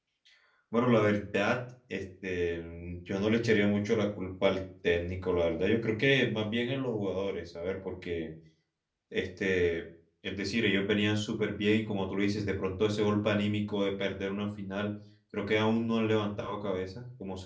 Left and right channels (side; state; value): both; identical; correlation 1.00